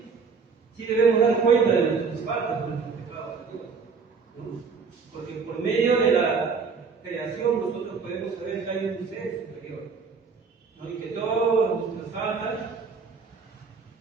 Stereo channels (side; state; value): left; quieter; 5.2 dB